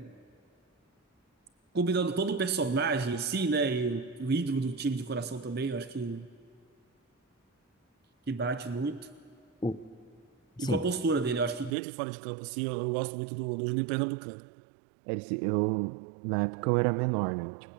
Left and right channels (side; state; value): left; drops out; at 11.8 s